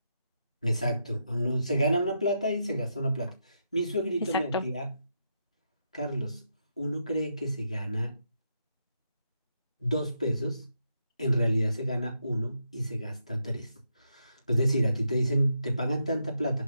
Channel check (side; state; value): both; inverted; correlation -0.82